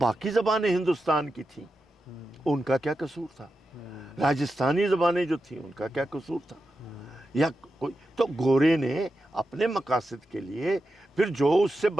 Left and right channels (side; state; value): both; normal; correlation 0.90